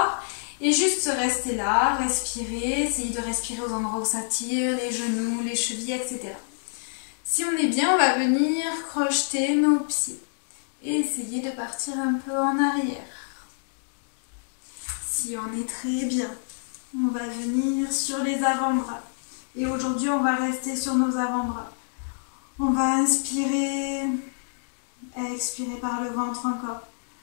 Et juste rester là, respirer, essayer de respirer aux endroits où ça tire, les genoux, les chevilles, etc. Si on est bien, on va venir crocheter nos pieds et essayer de partir un peu en arrière. Si on est très bien, on va venir sur les avant-bras. Et aujourd'hui, on va rester sur nos avant-bras. On va inspirer, expirer par le ventre encore.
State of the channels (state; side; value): silent; right; digital silence